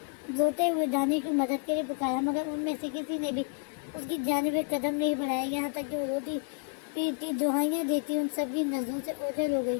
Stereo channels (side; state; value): right; quieter; 37.0 dB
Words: روتے ہوئے دانش کی مدد کے لیے پکارا مگر ان میں سے کسی نے بھی اس کی جانب ایک قدم نہیں بڑھایا، یہاں تک کہ وہ روتی پیٹتی دعائیاں دیتی ان سب کی نظروں سے اوجھل ہو گئی